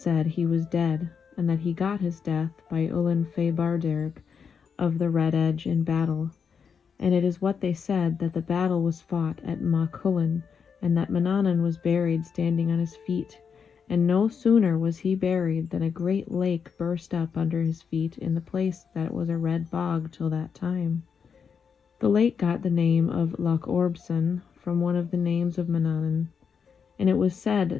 he was dead, and that he got his death by Ullin Fé Barderg of the Red Edge in battle. And it is what they said, that the battle was fought at Machullen, and that Manannan was buried standing on his feet. And no sooner was he buried than a great lake burst up under his feet in the place that was a red bog till that time. The lake got the name of Loch Orbson from one of the names of Manannan. And it was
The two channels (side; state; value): right; quieter; 6.4 dB